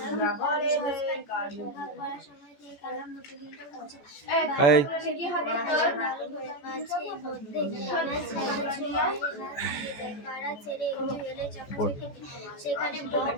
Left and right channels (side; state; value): right; late; 14 ms